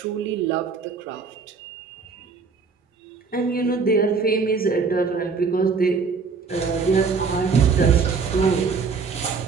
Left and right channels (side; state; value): left; quieter; 5.0 dB